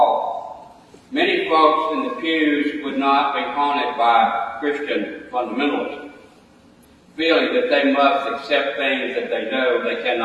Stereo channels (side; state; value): both; identical; correlation 1.00